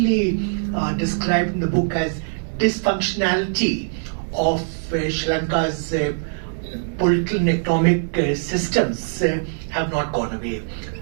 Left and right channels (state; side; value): silent; left; digital silence